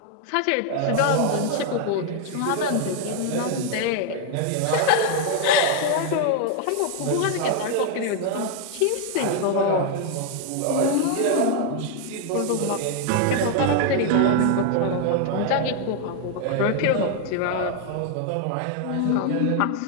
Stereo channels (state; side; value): different; both; correlation 0.00